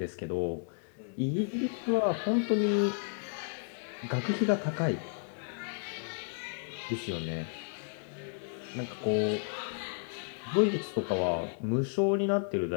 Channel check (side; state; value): right; silent; digital silence